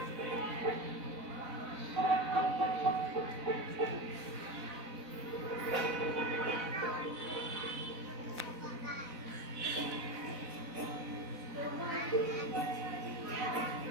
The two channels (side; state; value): left; late; 4.0 ms